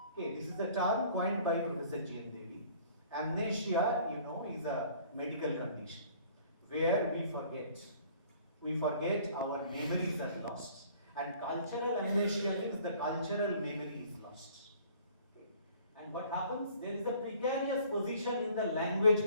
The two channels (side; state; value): both; inverted; correlation -0.53